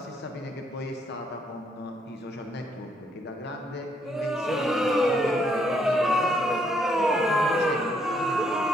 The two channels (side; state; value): both; normal; correlation 0.72